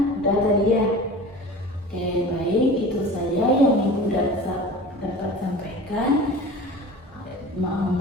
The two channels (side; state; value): both; normal; correlation 0.38